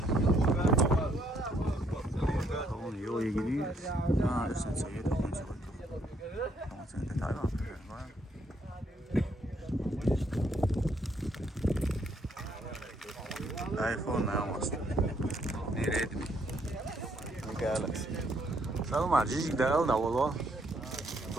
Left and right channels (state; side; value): normal; both; correlation 0.70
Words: Oğlum yola gidiyoruz. Ha, sen sayıda konuşalım. Ama sen de Tayvan. iPhone ne yapmasın? Nereye mi? Galaxy. Salma, cicik de aldı valla.